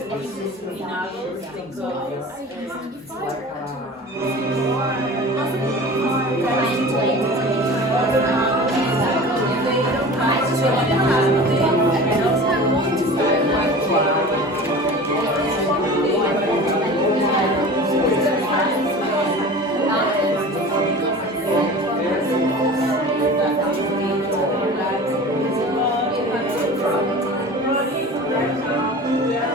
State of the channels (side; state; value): both; normal; correlation 0.37